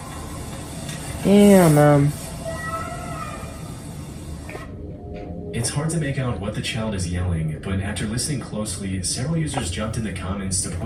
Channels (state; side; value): identical; both; correlation 1.00